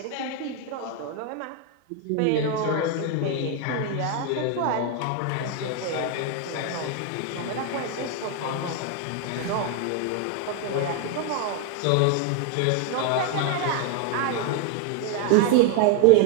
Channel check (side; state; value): both; different; correlation 0.01